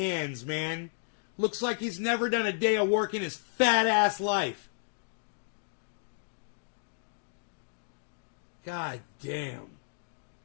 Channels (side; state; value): right; silent; digital silence